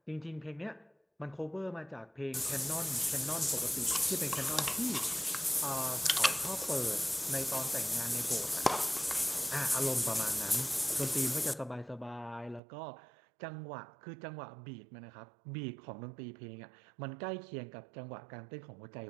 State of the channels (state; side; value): drops out; left; at 12.6 s